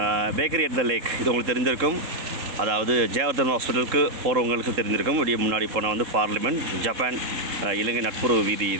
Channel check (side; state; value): left; late; 3.7 ms